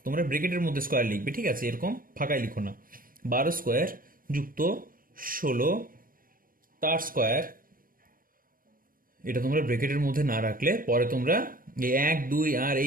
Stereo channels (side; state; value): left; late; 0.41 ms